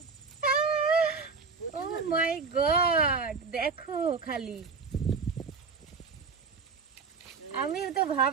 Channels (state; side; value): quieter; left; 4.9 dB